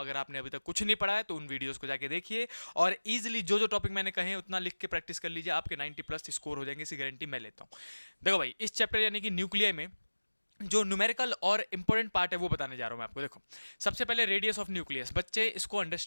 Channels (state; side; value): inverted; both; correlation -1.00